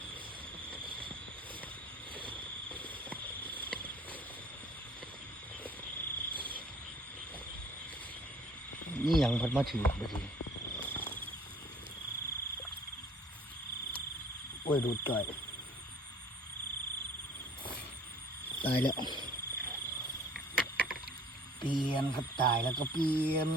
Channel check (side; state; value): both; normal; correlation 0.53